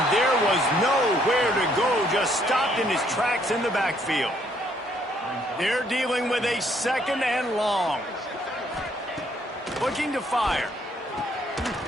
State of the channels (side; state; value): both; normal; correlation 0.67